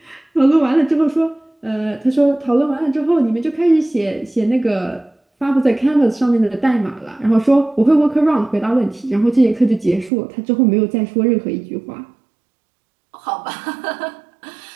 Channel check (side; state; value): left; drops out; at 10.1 s